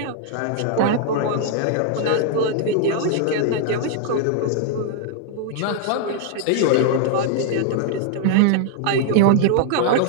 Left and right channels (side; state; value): both; different; correlation 0.00